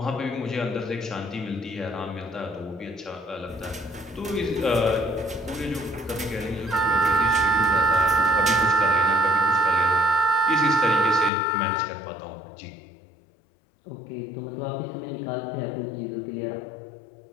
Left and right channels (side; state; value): right; drops out; at 11.3 s